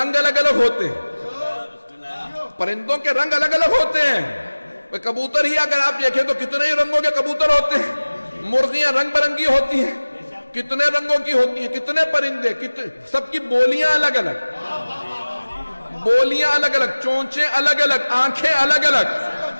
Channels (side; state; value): both; inverted; correlation -1.00